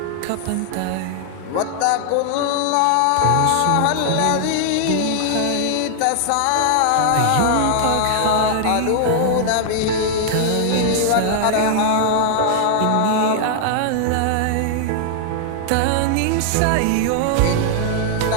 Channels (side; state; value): both; different; correlation -0.01